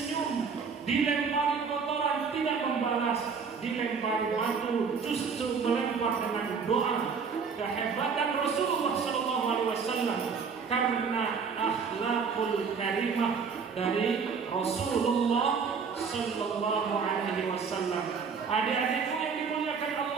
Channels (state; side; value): quieter; left; 5.8 dB